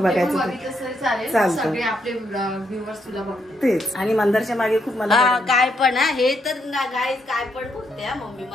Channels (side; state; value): both; normal; correlation 0.77